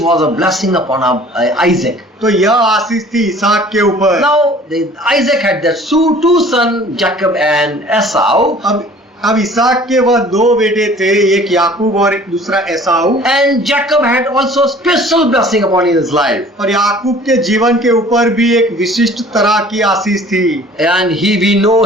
was a blessing upon Isaac. तो यह आशीष थी इसहाक के ऊपर। Now Isaac had their two sons, Jacob and Esau. अब इसहाक के वह दो बेटे थे, एक याकूब और एक दूसरा एसाऊ। And Jacob had also special blessing upon his life. और याकूब के जीवन के ऊपर भी एक विशिष्ट तरह की आशीष थी। And we know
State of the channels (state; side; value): normal; both; correlation 0.50